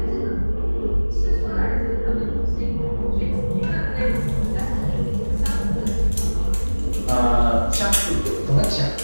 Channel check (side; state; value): both; inverted; correlation -1.00